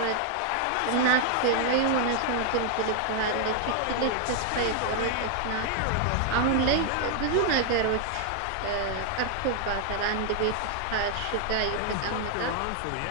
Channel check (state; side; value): different; both; correlation 0.00